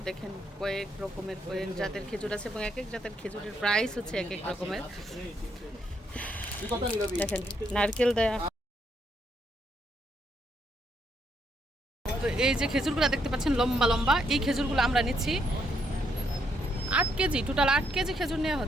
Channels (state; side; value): normal; both; correlation 0.75